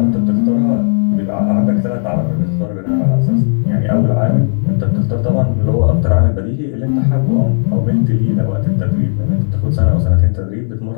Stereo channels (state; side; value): silent; right; 67 dB below the other